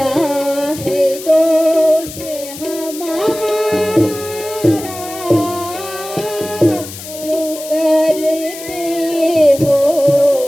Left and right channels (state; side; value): noise; left; hiss, 13 dB below the sound